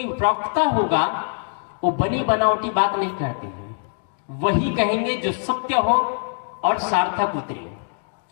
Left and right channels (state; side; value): silent; right; 64 dB below the other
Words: प्रवक्ता होगा, वो बनी बनावटी बात नहीं कहते हैं, वही कहेंगे जो सत्य हो और सार्थक उतरे।